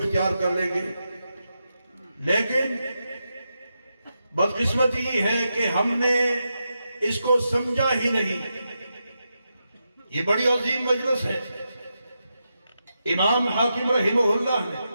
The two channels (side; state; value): both; inverted; correlation -0.87